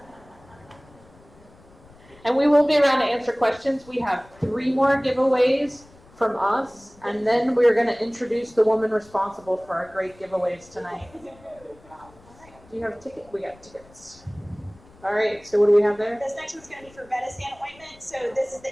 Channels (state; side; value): noise; left; rumble, 26 dB below the sound